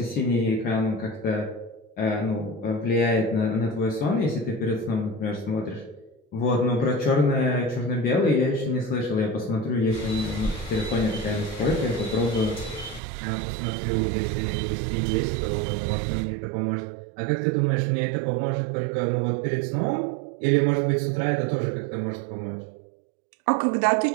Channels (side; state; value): left; drops out; at 13.0 s